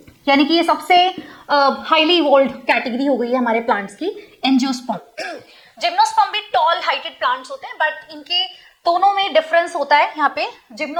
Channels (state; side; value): identical; both; correlation 1.00